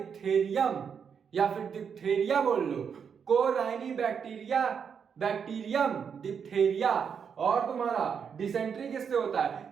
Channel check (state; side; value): quieter; left; 6.9 dB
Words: या फिर डिप्थेरिया बोल लो, कोराइनी बैक्टीरियम डिप्थेरिया। और तुम्हारा डिसेंट्री किससे होता है,